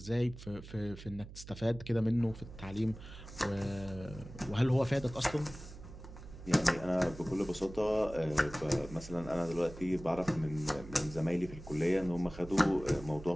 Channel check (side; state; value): right; noise; hum, 14 dB below the sound